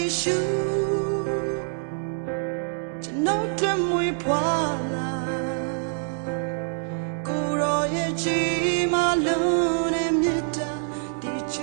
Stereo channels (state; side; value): silent; left; digital silence